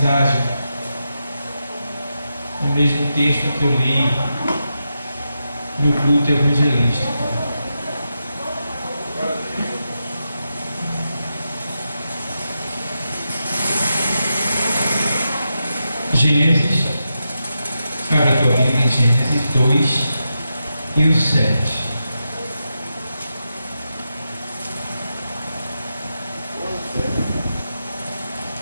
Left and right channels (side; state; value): both; inverted; correlation -0.88